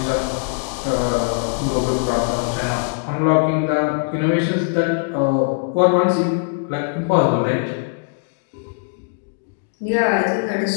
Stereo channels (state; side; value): silent; right; digital silence